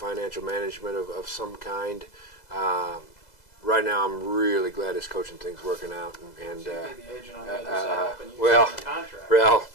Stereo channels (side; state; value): right; late; 2.0 ms